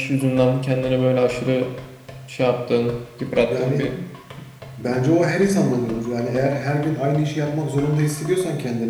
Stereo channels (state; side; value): identical; both; correlation 1.00